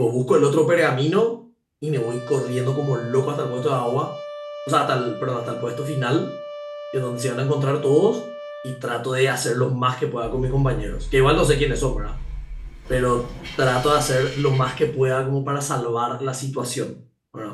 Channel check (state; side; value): identical; both; correlation 1.00